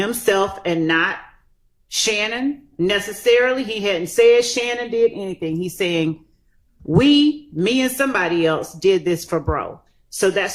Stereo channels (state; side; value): identical; both; correlation 1.00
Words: and not Shannon necessarily. He hadn't said Shannon did anything. He's saying, me and somebody else did this for bro. So